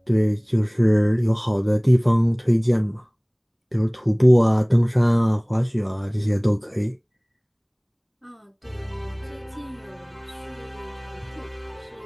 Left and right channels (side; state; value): both; identical; correlation 1.00